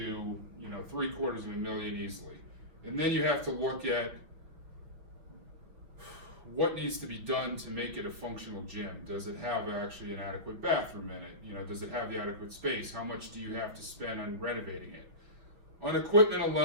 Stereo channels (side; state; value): left; late; 5.8 ms